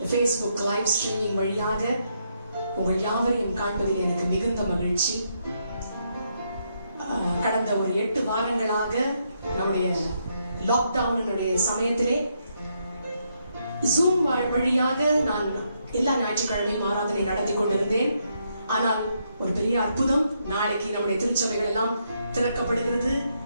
Facebook லைவ் ஸ்ட்ரீமிங் வழியாக உங்கள் யாவரையும் காண்பதில் எனக்கு மிகுந்த மகிழ்ச்சி. கடந்த ஒரு 8 வாரங்களாக நம்முடைய லாக்டவுனுடைய சமயத்திலே ஜூம் வழியாக நான் எல்லா ஞாயிற்றுக்கிழமையும் ஆராதனை நடத்தி கொண்டிருந்தேன். ஆனால் ஒரு பெரிய அற்புதம், நாளைக்கு நம்முடைய திருச்சபைகள் எல்லாம் திறக்கப்படுகிறது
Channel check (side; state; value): both; inverted; correlation -0.77